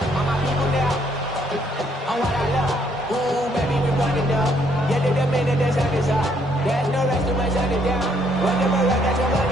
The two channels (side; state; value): both; normal; correlation 0.69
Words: There's no rest to my shutting down. Whenever I got your